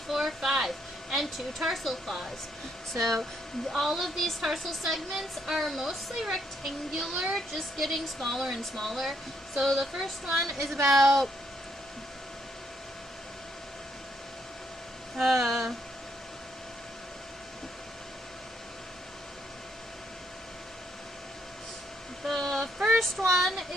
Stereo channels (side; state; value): both; normal; correlation 0.74